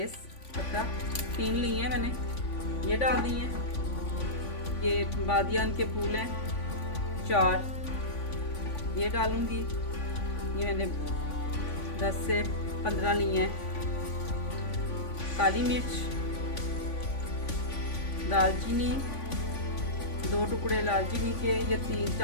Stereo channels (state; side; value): late; right; 3.5 ms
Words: पत्ता, 3 ली हैं मैंने, ये डाल दी हैं। ये बादियान के फूल हैं 4, ये डालूंगी। ये मैंने 10 से 15 ली हैं। काली मिर्च, दालचीनी, 2 टुकड़े दालचीनी के, ये